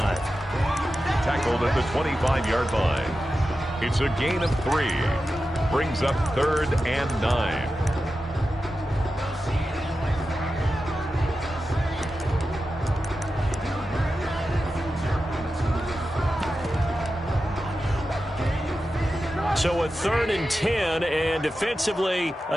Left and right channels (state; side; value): normal; both; correlation 0.92